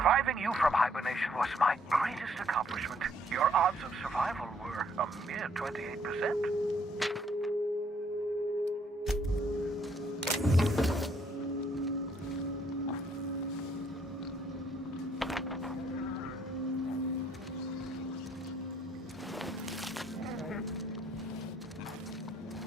you from hibernation was my greatest accomplishment. Your odds of survival were a mere 28%.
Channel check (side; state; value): both; normal; correlation 0.67